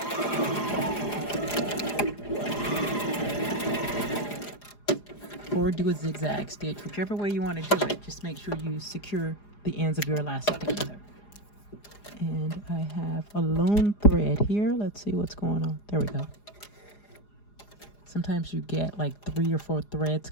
Or do a zigzag stitch, whichever way you want to do it. Just make sure you secure the ends of your elastic together. And I have a lone thread here. Let's see what's going on. There we go. Sometimes you get like 3 or 4 threads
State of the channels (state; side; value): late; right; 4.9 ms